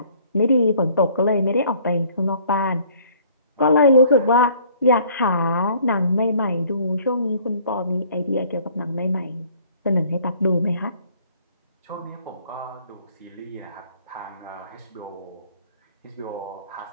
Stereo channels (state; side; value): inverted; both; correlation -0.57